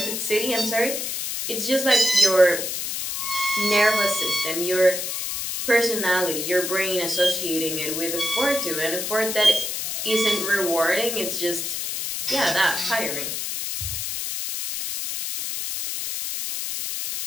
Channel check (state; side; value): noise; left; hiss, 3 dB below the sound